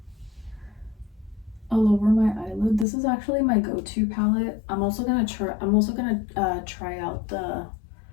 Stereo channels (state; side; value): drops out; right; at 2.9 s